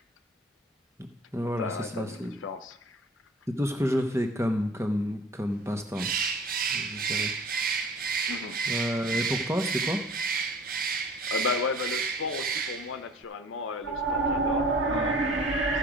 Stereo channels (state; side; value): normal; both; correlation 0.47